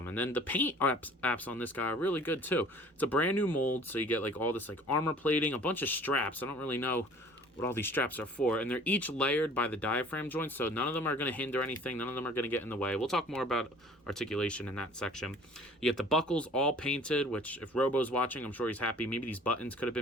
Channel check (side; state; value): both; normal; correlation 0.49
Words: And then the paint apps on this guy are really good too. It's a brand new mold, so you get like all this like armor plating, a bunch of straps. I don't really know what all these straps are for, and they're each layered by the diaphragm joints, so none of them are going to hinder anything, none of them are going to get in the way. We'll talk more about articulation in that section. You get the buckles all painted, which if Robo's watching, I'm sure he's happy. Maybe these buttons could have